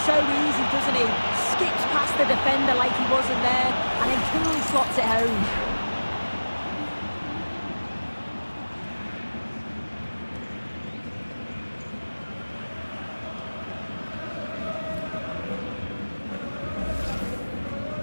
so easy, doesn't he? Skips past the defender like he wasn't there, and then coolly slots it home.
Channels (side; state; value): both; inverted; correlation -1.00